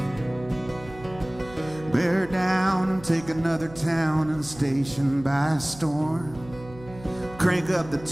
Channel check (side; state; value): right; noise; hum, 18 dB below the sound